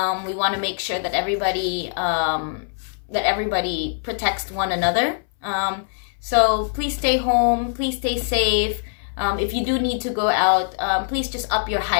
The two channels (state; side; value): silent; right; 60 dB below the other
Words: We want to make sure that everybody protects one another. So please stay home. Please stay safe. If you do need to go out, please just up your